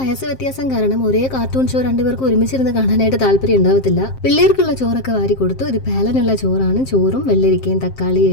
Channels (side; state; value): right; late; 7.6 ms